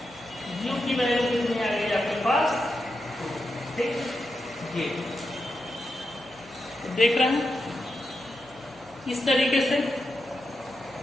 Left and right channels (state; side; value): noise; left; hum, 28 dB below the sound